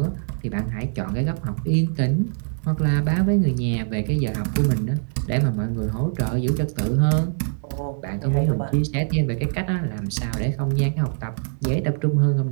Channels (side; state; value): left; silent; digital silence